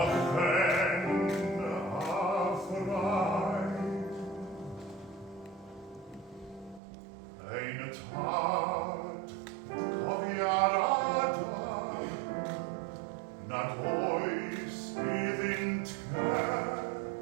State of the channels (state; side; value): drops out; left; at 6.8 s